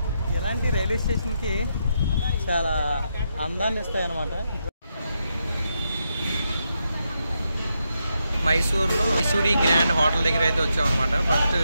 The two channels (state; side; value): inverted; both; correlation -0.83